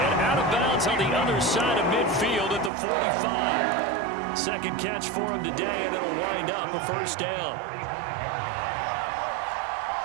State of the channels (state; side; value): drops out; left; at 2.7 s